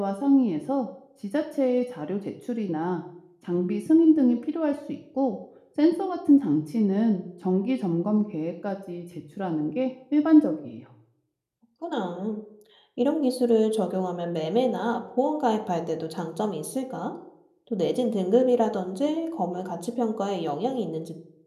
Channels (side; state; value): both; identical; correlation 1.00